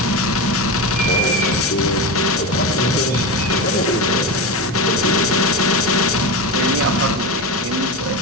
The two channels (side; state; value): both; normal; correlation 0.20